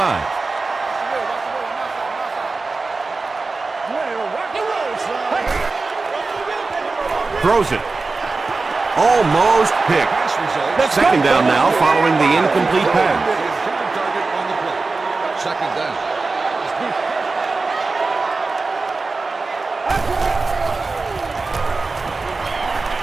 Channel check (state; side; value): quieter; left; 3.8 dB